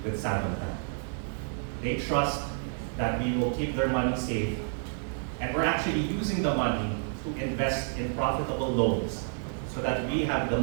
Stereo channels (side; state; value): left; silent; 57 dB below the other